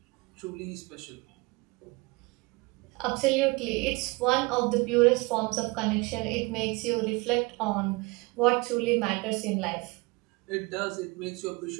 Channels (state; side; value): quieter; left; 25.8 dB